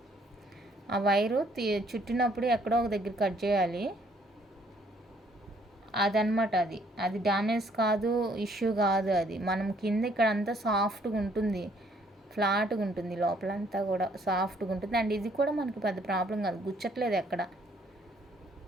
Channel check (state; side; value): normal; both; correlation 0.64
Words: ఆ వైరు చుట్టినప్పుడు ఎక్కడో ఒక దగ్గర కట్ చేయాలి, అదనమాట. అది డ్యామేజ్ కాదు, ఇష్యూ కాదు. అది మనం కింద ఇక్కడ అంతా సాఫ్ట్గా ఉంటుంది, ఫ్లాట్గా ఉంటుంది, లోపలంతా కూడా సాఫ్ట్గా ఉంటుంది. అండ్ ఇది కూడా మనకి పెద్ద ప్రాబ్లం కాదు,